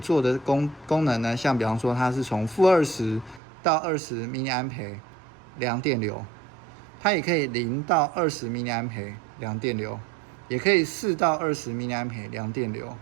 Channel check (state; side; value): drops out; left; at 3.4 s